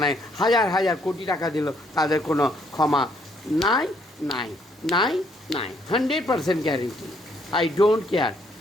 নাই, হাজার হাজার কোটি টাকা দিল তাদের কোনো ক্ষমা নাই নাই নাই নাই। 100% গ্যারেন্টি। I don't care.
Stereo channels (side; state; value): both; normal; correlation 0.69